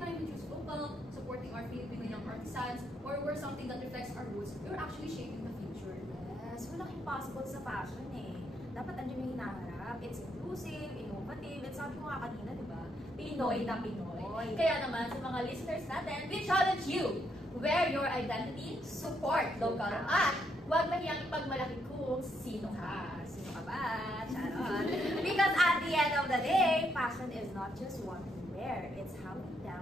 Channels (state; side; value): normal; both; correlation 0.76